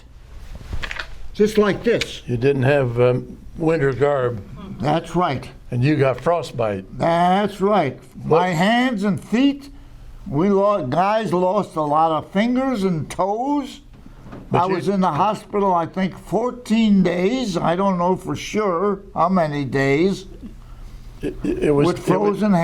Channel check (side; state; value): both; identical; correlation 1.00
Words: Just like this. You didn't have winter garb, That's right. and you got frostbite. That's right. My hands and feet, guys lost a lot of fingers and toes. I was in the hospital, I think, 14 days. I don't know for sure how many days. It was With frozen